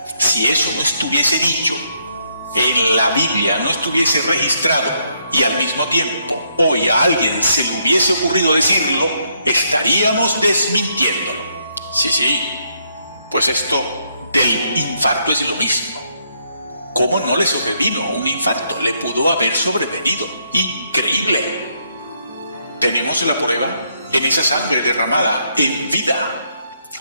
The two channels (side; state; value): both; inverted; correlation -0.74